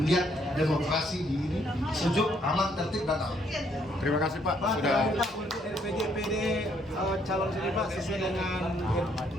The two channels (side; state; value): both; normal; correlation 0.69